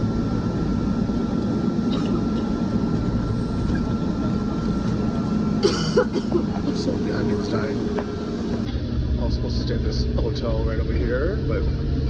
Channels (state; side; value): identical; both; correlation 1.00